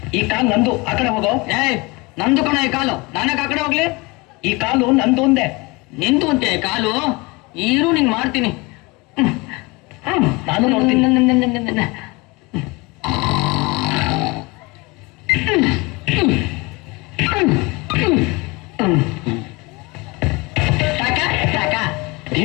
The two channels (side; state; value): right; quieter; 25.4 dB